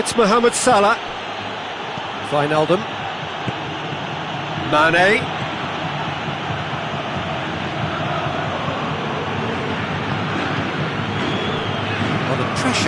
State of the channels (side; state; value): both; identical; correlation 1.00